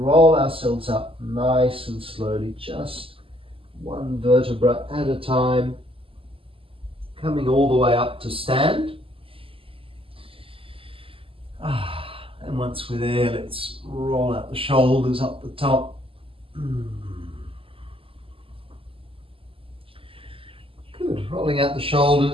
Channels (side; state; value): left; late; 0.26 ms